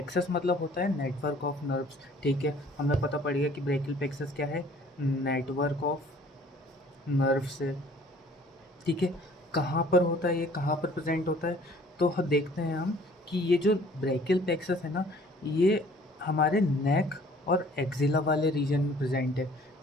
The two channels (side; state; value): both; normal; correlation 0.54